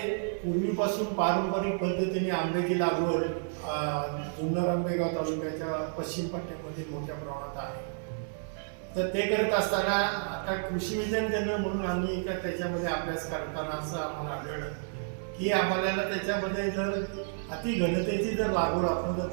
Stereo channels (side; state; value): left; silent; digital silence